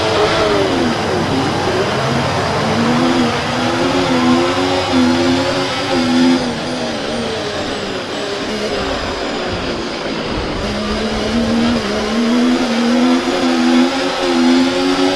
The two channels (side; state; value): both; identical; correlation 1.00